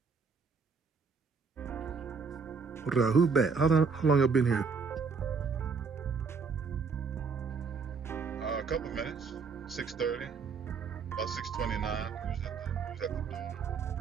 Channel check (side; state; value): left; quieter; 5.2 dB